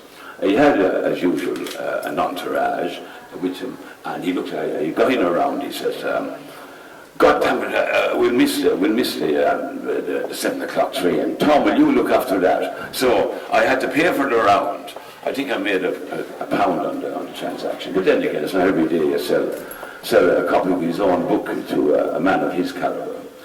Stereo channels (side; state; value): both; identical; correlation 1.00